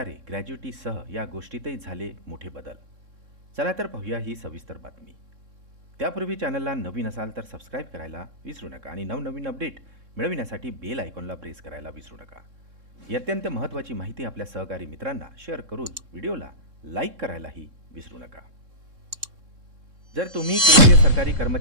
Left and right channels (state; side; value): late; left; 3.7 ms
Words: ग्रॅज्युटीसह या गोष्टीतही झाले मोठे बदल. चला तर पाहूया ही सविस्तर बातमी. त्यापूर्वी चॅनलला नवीन असाल तर सबस्क्राईब करायला विसरू नका आणि नवनवीन अपडेट मिळविण्यासाठी बेल आयकॉनला प्रेस करायला विसरू नका. ही अत्यंत महत्त्वाची माहिती आपल्या सहकारी मित्रांना शेअर करून व्हिडिओला लाईक करायलाही विसरू नका. जर तुम्ही केंद्रीय सरकारी